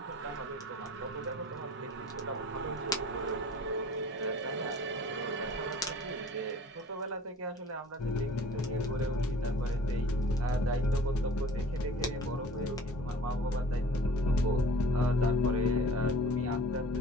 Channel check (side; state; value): both; normal; correlation 0.47